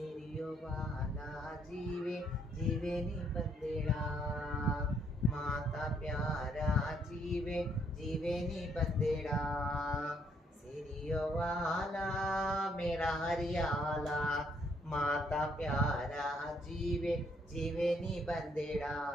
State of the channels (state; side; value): normal; both; correlation 0.70